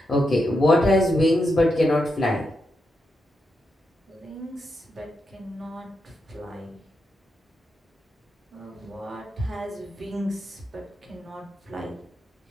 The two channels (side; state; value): both; normal; correlation 0.85